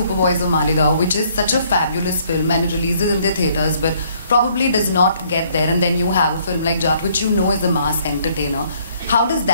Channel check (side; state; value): both; inverted; correlation -0.64